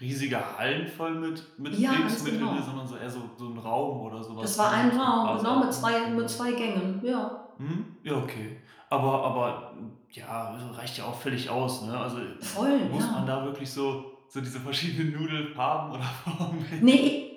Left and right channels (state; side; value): identical; both; correlation 1.00